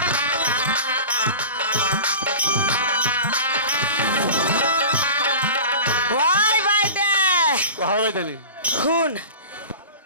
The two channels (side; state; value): both; inverted; correlation -0.35